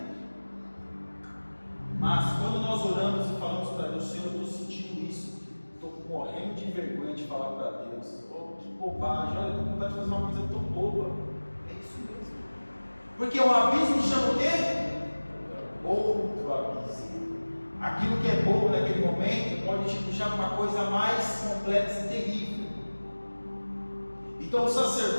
Mas quando nós oramos e falamos para Deus: Senhor, eu estou sentindo isso, estou morrendo de vergonha de falar para Deus, que bobagem, olha, eu estou com vontade de fazer uma coisa tão boba. É isso mesmo. Porque o abismo chama o quê? Outro abismo. Aquilo que é bobo naquele momento pode te puxar para uma coisa mais complexa e terrível. Então o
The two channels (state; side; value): inverted; both; correlation -1.00